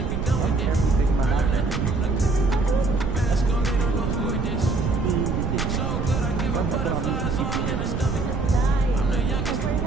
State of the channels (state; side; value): noise; right; rumble, 2 dB below the sound